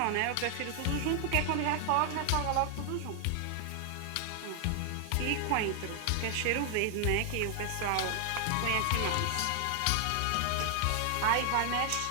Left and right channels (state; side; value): different; both; correlation 0.00